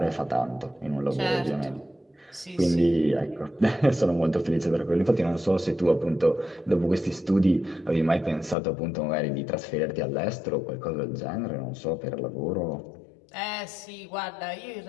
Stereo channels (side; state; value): right; drops out; at 8.6 s